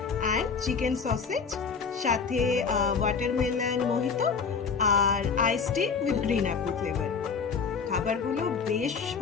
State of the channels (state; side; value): quieter; right; 5.5 dB